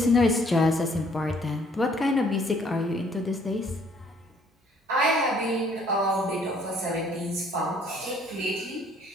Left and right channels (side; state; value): both; normal; correlation 0.62